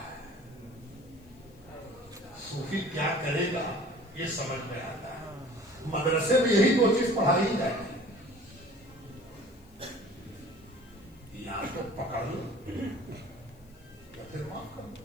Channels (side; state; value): left; noise; hiss, 29 dB below the sound